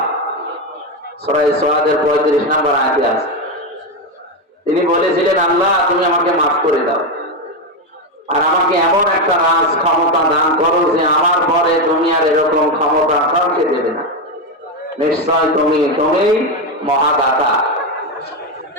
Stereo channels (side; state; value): both; normal; correlation 0.10